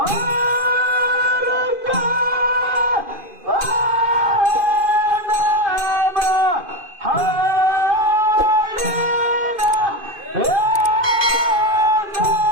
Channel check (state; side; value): late; left; 2.5 ms